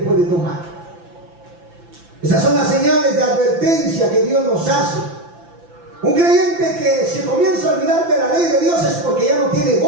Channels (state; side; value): late; left; 5.9 ms